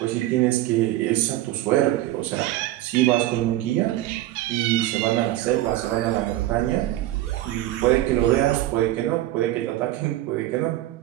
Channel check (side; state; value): left; quieter; 15.2 dB